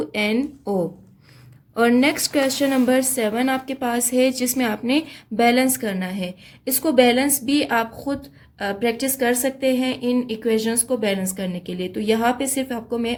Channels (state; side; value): identical; both; correlation 1.00